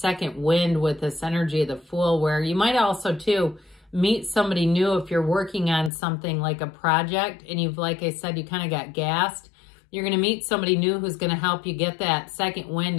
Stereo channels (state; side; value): drops out; right; at 5.9 s